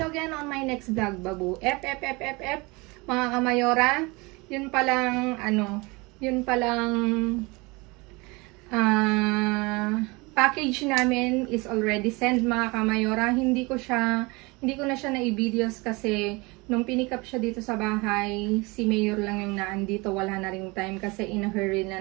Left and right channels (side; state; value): left; quieter; 25.6 dB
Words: again on my next vlog, babu. F mga Kamayora. Yun palang package namin is already sent mga Kamayora. Hindi ko na siya na-i-videos kasi nung pinikap siya dito sa bahay, si Mayor lang yung naandito, wala na ring time kasi in a hurry na